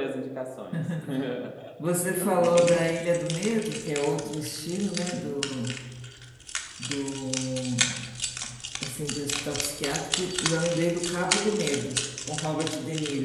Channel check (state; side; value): identical; both; correlation 1.00